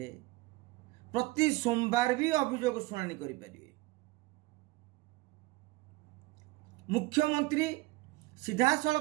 प्रति सोमवार भी अभियोग शुणाणी करि परिबे। मुख्यमंत्री सीधा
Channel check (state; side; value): quieter; left; 20.5 dB